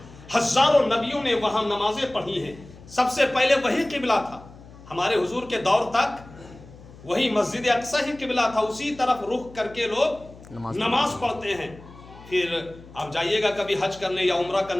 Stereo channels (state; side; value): noise; left; hum, 20 dB below the sound